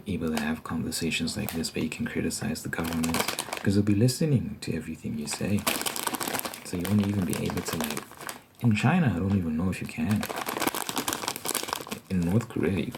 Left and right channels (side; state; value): both; identical; correlation 1.00